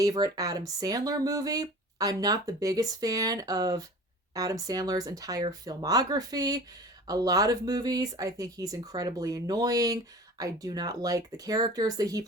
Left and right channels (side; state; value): both; normal; correlation 0.40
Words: Adam Sandler movie. I'm not the biggest fan of Adam Sandler's entire filmography. A lot of movies, I think he's incredibly annoying. I do not like the characters that he